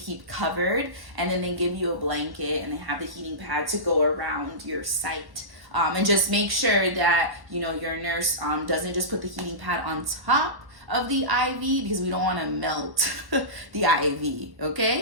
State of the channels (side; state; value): left; late; 1.1 ms